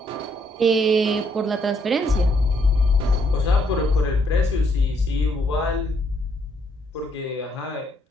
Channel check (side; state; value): both; normal; correlation 0.72